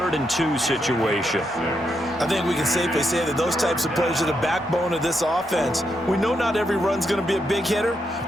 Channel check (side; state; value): both; normal; correlation 0.81